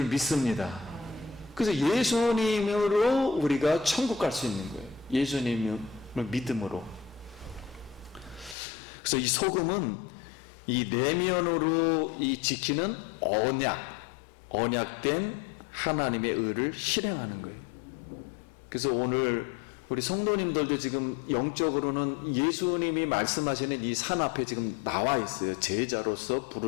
믿습니다. 그래서 예수님으로 우리가 천국 갈 수 있는 거예요. 예수님을 믿음으로. 그래서 이 소금은 이 내면으로 이 지키는 언약된 하나님의 의를 실행하는 거예요. 그래서 오늘 우리 성도님들도 지금 영적으로는 예수님이 말씀하시는 이 산 앞에 지금 나와 있어요. 제자로서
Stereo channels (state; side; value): drops out; right; at 8.6 s